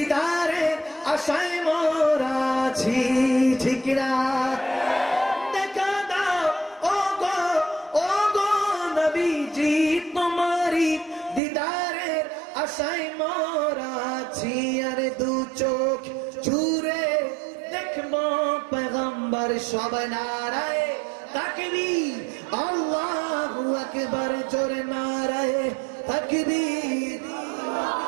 আশায় মোরা আছি, ঠিক না? দেখা দাও ও গো নবীজি, তোমারি দিদারের আশায় মোরা আছি, আরে দু চোখ জুড়ে দেখবো পয়গম্বর, সব নারায়ে তাকবীর আল্লাহু আকবার, জোরে নারায়ে তাকবীর,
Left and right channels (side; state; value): left; drops out; at 11.4 s